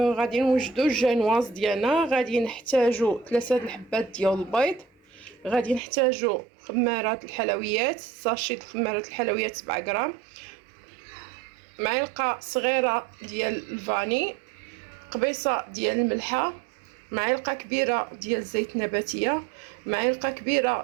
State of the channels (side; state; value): left; drops out; at 5.8 s